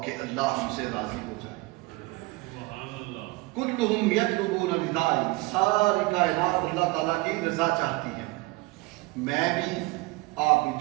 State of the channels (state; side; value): quieter; left; 23.2 dB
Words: کہ اللہ ہم سے راضی ہو جائے۔ کلہم یطلبون رضائی، ساری کائنات اللہ تعالیٰ کی رضا چاہتی ہے۔ میں بھی آپ بھی